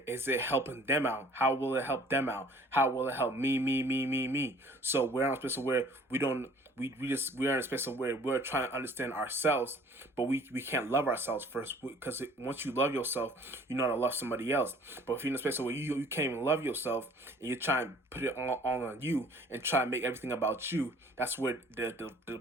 it helping them out? How will it help them out? How will it help me? So we're in a space of where we are in a space of where we're trying to understand ourselves, but we can't love ourselves first, because once you love yourself, you know how to love somebody else. But if you're in a space where you can't even love yourself, and you're trying to put it all on you and try to make everything about you, that's where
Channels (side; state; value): both; normal; correlation 0.53